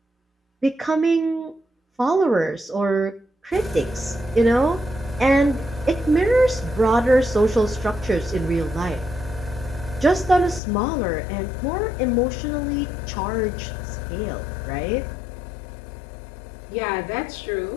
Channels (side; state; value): right; drops out; at 10.6 s